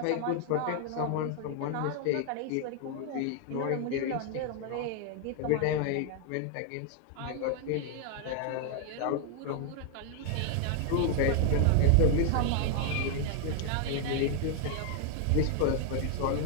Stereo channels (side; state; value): both; different; correlation 0.00